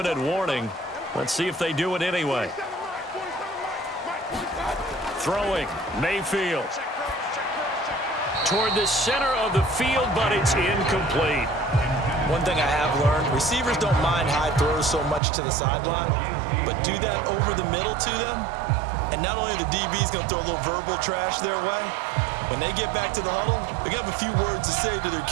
warning. Let's see if they do it anyway. Throwing, Mayfield. Toward the center of the field, but it's incomplete. One thing I have learned, receivers don't mind high throws so much to the sideline, but do that over the middle to them, and not only are the DBs going to throw a little verbal trash their way, when they get back to the huddle, they're going to have a few words to say to their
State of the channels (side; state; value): left; drops out; at 15.2 s